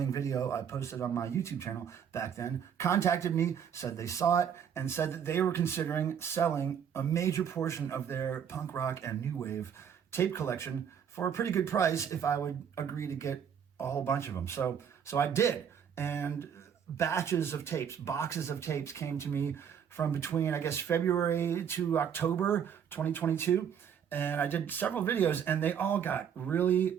video I posted on my YouTube channel back then contacted me, said they saw it, and said that they were considering selling a major portion of their punk rock and new wave tape collection for a pretty good price if I would agree to get a whole bunch of them. So I did. And batches of tapes, boxes of tapes came to me from between, I guess, February to October 2022. And I did several videos and they all got really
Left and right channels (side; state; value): left; quieter; 8.0 dB